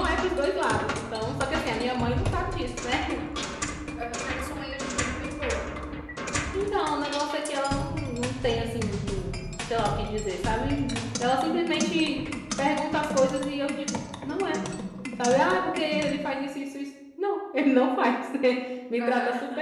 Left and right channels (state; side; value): identical; both; correlation 1.00